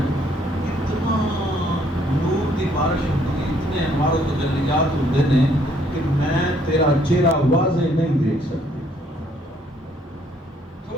اتنا نور کی بارش ہوتی اتنے انوار و تجلیات ہوتے ہیں کہ میں تیرا چہرہ واضح نہیں دیکھ سکتی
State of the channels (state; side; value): normal; both; correlation 0.66